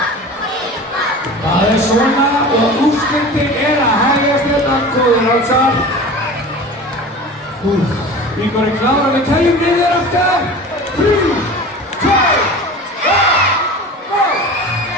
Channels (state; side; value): normal; both; correlation 0.36